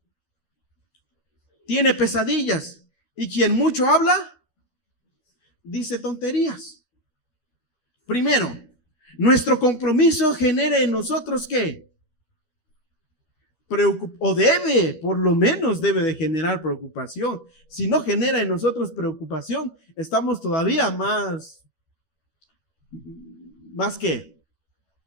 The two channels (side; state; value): right; late; 12 ms